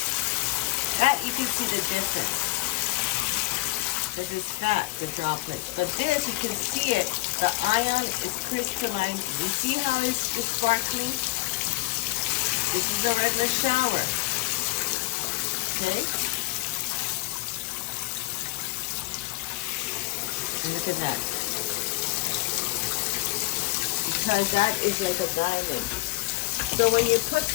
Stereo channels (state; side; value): quieter; right; 21.6 dB